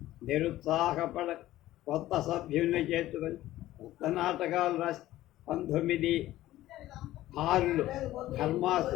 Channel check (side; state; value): right; quieter; 15.2 dB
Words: నిరుత్సాహపడ కొత్త సభ్యుల్ని చేర్చుకొని కొత్త నాటకాలు రాసి 1906లో